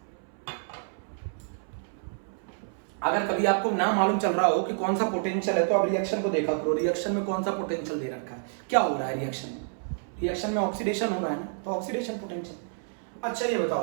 अगर कभी आपको ना मालूम चल रहा हो कि कौन सा पोटेंशियल है तो आप रिएक्शन को देखा करो, रिएक्शन में कौन सा पोटेंशियल दे रखा है, क्या हो रहा है रिएक्शन में। रिएक्शन में ऑक्सीडेशन हो रहा है ना, तो ऑक्सीडेशन पोटेंशियल। अच्छा, ये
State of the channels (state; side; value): silent; left; 59 dB below the other